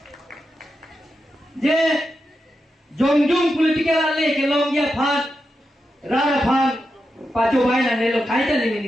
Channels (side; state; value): both; normal; correlation 0.88